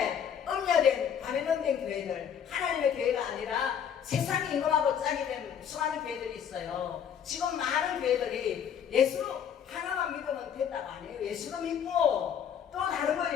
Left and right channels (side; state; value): right; quieter; 8.2 dB